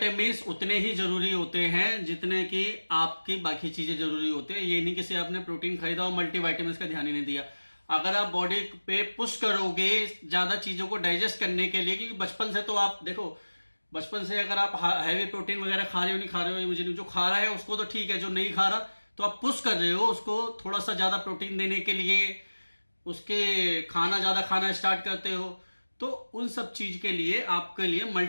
उतने ही जरूरी होते हैं जितने कि आपकी बाकी चीजें जरूरी होती है। ये नहीं कि सिर्फ आपने प्रोटीन खरीदा और मल्टीविटामिन्स का ध्यान ही नहीं दिया। अगर आप बॉडी पे पुश करोगे ज्यादा चीजों को डाइजेस्ट करने के लिए, क्योंकि बचपन से तो आप देखो, बचपन से अगर आप हैवी प्रोटीन वगैरह खा रहे हो, नहीं खा रहे हो, ये मुझे नहीं, जो खा रहा है उसको तो ठीक है, जो नहीं खा रहा तो आप पुश कर रहे हो उसको थोड़ा सा ज्यादा प्रोटीन देने के लिए, उसके ज्यादा खाना स्टार्ट करते हो। तो उन सब चीज के लिए आपके लिए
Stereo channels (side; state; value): both; inverted; correlation -1.00